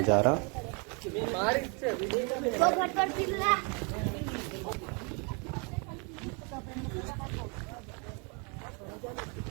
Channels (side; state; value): left; quieter; 34.3 dB